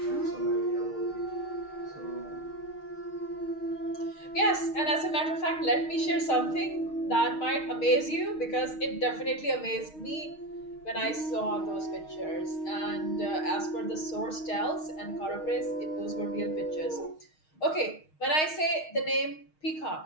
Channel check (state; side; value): late; right; 6.4 ms